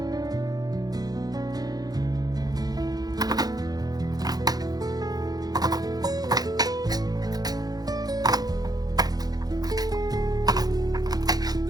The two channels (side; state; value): left; late; 0.19 ms